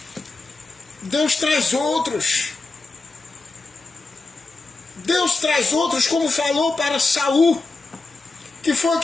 Deus traz outros. Deus traz outros, como falou para Saul. Que foi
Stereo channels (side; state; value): right; quieter; 3.6 dB